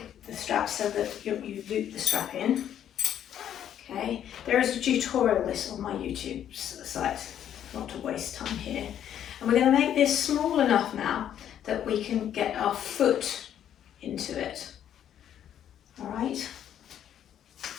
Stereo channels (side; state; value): right; quieter; 10.1 dB